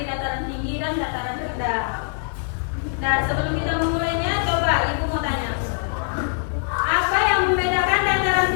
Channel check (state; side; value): silent; right; 64 dB below the other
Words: dataran tinggi dan dataran rendah. Nah, sebelum kita memulainya, coba Ibu mau tanya. Apa yang membedakan dataran